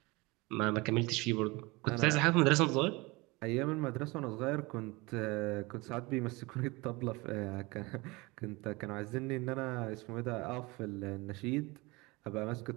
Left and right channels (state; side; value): quieter; left; 24.1 dB